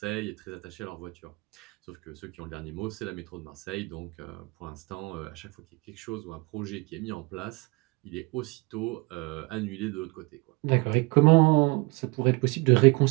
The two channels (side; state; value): left; quieter; 26.5 dB